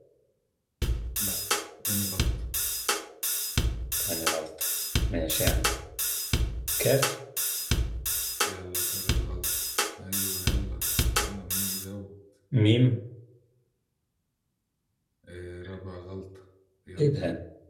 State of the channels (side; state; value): both; identical; correlation 1.00